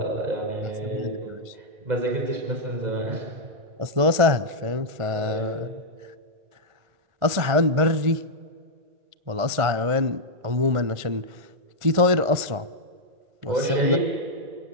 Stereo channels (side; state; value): left; late; 1.5 ms